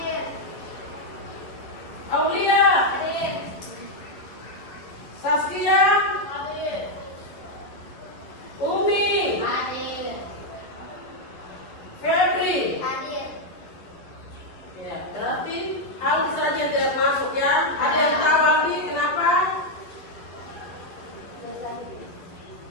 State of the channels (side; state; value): right; late; 11 ms